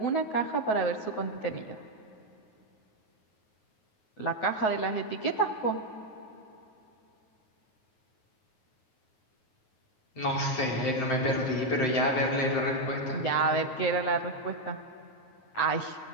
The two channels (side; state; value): right; late; 9.4 ms